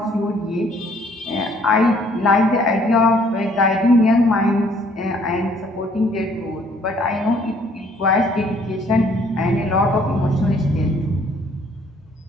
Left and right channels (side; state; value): both; normal; correlation 0.61